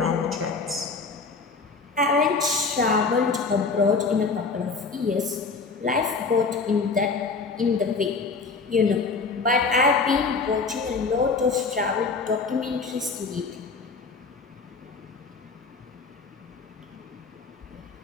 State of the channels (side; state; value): right; quieter; 4.4 dB